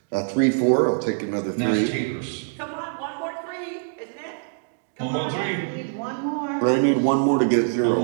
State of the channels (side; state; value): left; silent; digital silence